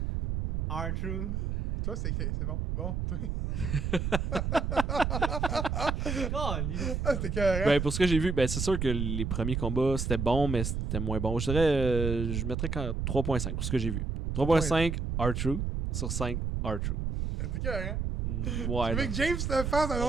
R2. Toi, c'est bon. Bon, toi. Ah, c'était carré. Ben, pour ce que j'ai vu, ben, c'est sûr que les premiers combats, c'était bon, mais c'était moins bon. Je dirais. Je mettrais 3.5 pour ce que j'ai vu. 3.5 R-Truth sur 5 R-Truth. C'était carré. Ouais. Tu veux non. que James le fasse dans un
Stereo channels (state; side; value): noise; right; rumble, 1 dB below the sound